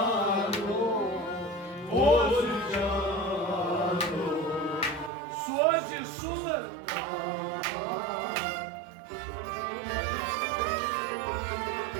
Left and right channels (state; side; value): drops out; left; at 5.1 s